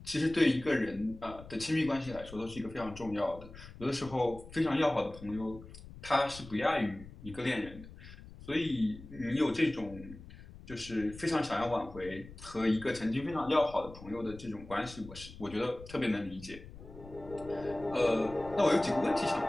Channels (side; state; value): left; noise; rumble, 16 dB below the sound